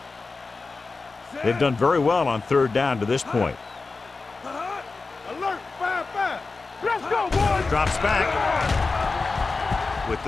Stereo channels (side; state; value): right; quieter; 3.9 dB